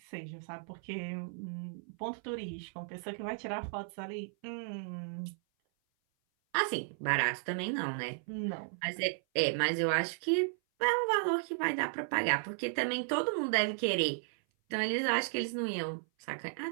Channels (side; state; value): left; silent; 55 dB below the other